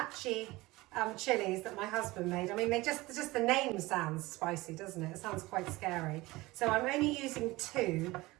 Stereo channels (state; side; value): quieter; left; 20.4 dB